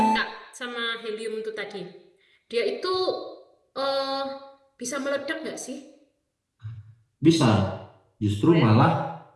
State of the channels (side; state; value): both; identical; correlation 1.00